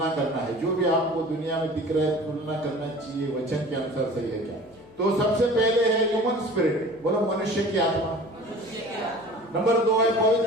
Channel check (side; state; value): left; noise; hum, 29 dB below the sound